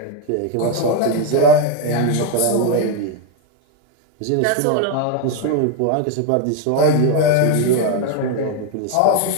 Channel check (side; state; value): both; different; correlation 0.01